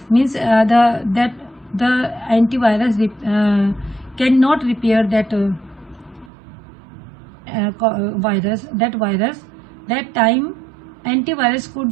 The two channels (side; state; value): left; drops out; at 6.3 s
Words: means the antivirus cannot repair that virus. That time antivirus